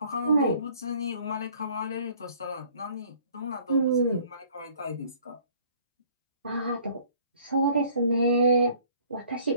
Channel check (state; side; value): inverted; both; correlation -0.56